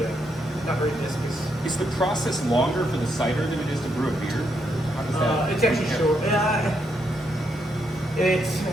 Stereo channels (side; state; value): both; normal; correlation 0.78